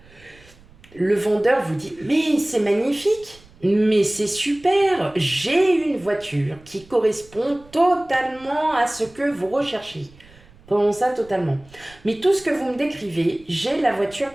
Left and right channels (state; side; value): noise; right; rumble, 26 dB below the sound